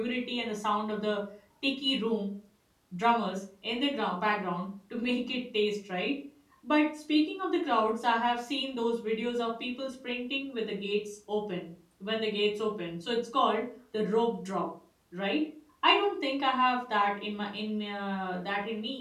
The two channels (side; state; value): both; identical; correlation 1.00